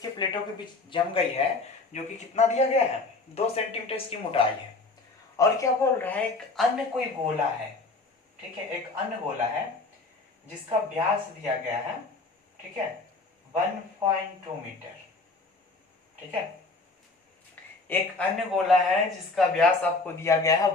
प्लेटों के बीच जम गई है, जो कि कितना दिया गया है 2 सेंटीमीटर इसकी मोटाई है। और क्या बोल रहा है, एक अन्य कोई गोला है। ठीक है, एक अन्य गोला है जिसका व्यास दिया गया है, ठीक है, 1.2 मीटर। ठीक है, एक अन्य गोला है जिसका व्यास आपको दिया गया है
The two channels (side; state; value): right; quieter; 3.6 dB